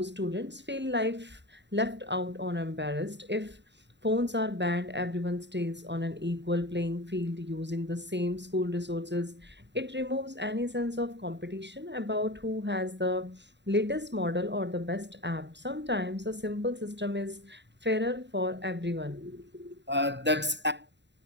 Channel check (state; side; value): late; left; 0.52 ms